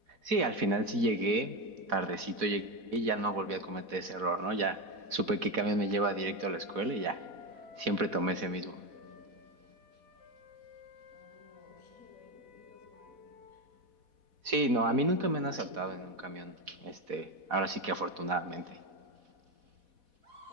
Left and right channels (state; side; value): late; left; 4.1 ms